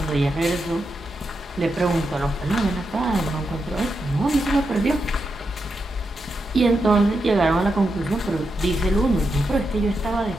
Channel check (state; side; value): normal; both; correlation 0.86